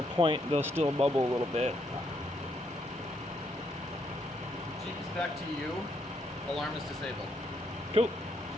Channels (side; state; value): both; normal; correlation 0.75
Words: point, they'll still bubble a little bit. Jeep's back to you. Alarm is disabled. Cool.